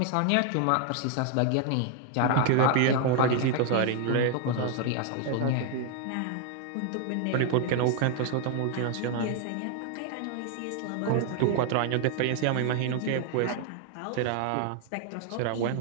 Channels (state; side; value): different; both; correlation 0.00